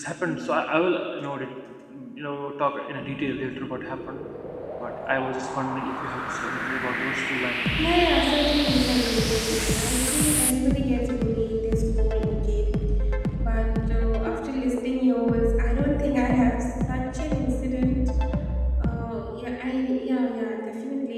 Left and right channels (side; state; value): both; identical; correlation 1.00